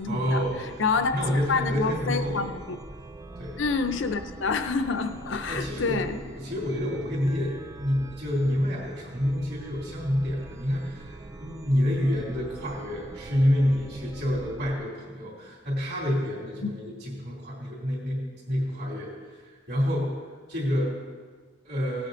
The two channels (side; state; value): both; normal; correlation 0.67